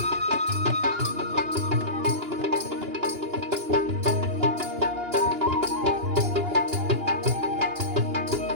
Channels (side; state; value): left; late; 2.9 ms